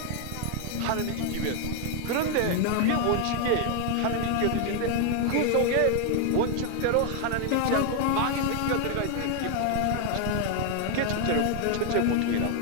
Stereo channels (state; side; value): different; both; correlation 0.00